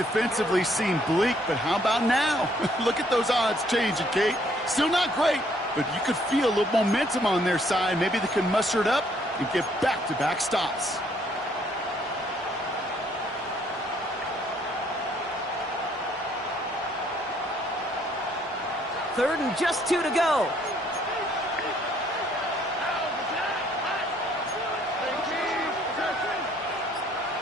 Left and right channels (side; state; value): both; normal; correlation 0.65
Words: seem bleak, but how about now? Look at those odds changing, Kate. Still not great, but you could feel a little momentum on their side. Maybe they can muster it up and get back-to-back stops. Third and just 2 to go.